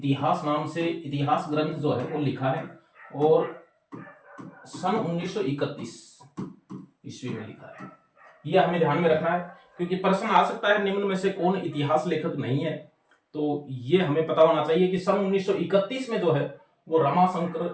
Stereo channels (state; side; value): identical; both; correlation 1.00